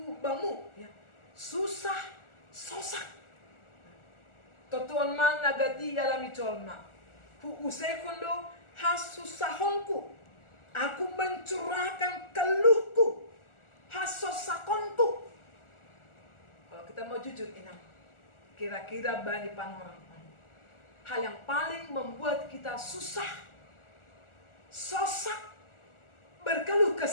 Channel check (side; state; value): right; late; 1.4 ms